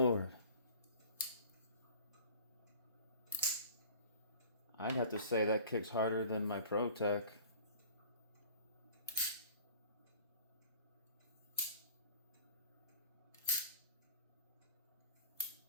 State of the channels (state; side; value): inverted; both; correlation -0.44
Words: I'd have to say that kicks harder than my ProTech.